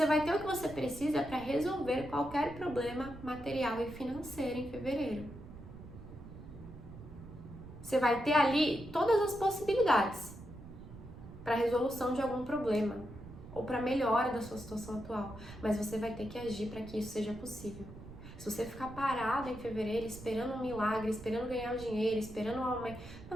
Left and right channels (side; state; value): right; noise; rumble, 15 dB below the sound